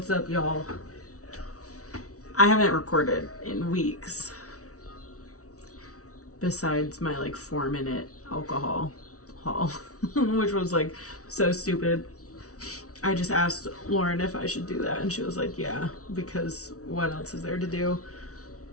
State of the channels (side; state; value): right; late; 0.66 ms